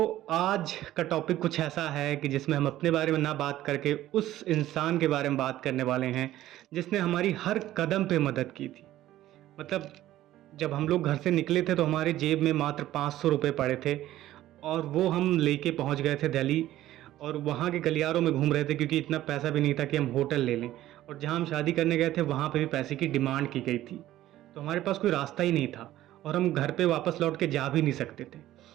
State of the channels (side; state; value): left; quieter; 14.2 dB